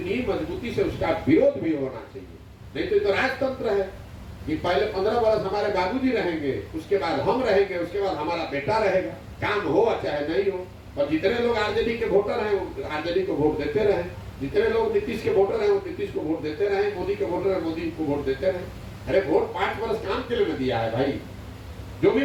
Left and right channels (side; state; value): both; identical; correlation 1.00